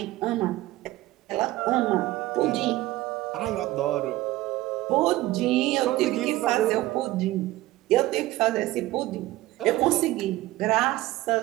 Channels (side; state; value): left; quieter; 17.1 dB